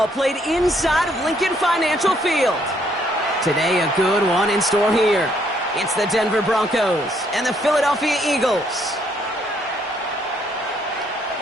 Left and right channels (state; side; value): normal; both; correlation 0.69